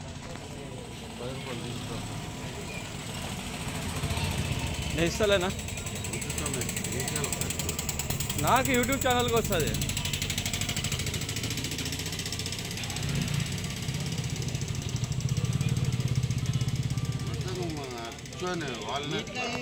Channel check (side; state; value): both; identical; correlation 1.00